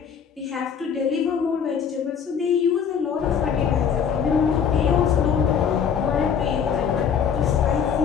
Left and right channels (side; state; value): right; quieter; 7.3 dB